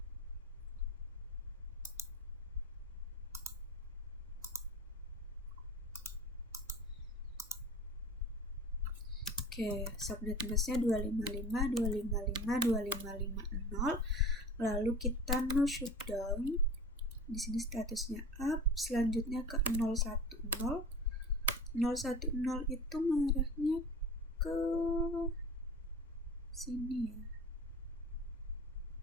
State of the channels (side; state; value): both; normal; correlation 0.38